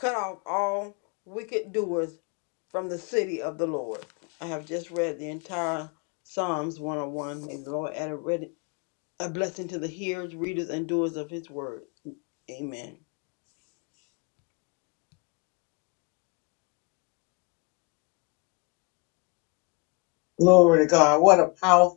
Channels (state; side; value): quieter; right; 30.1 dB